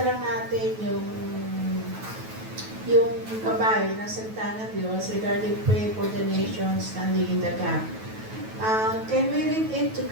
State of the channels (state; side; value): late; left; 9.2 ms